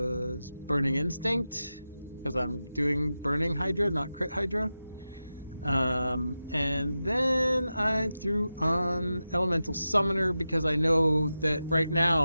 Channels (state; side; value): inverted; both; correlation -0.92